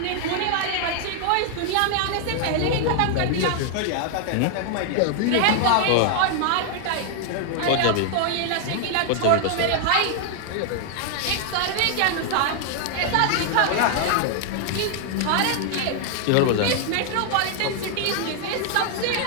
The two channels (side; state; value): both; different; correlation 0.00